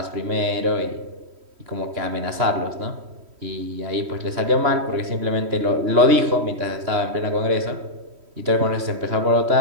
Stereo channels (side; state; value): left; late; 3.1 ms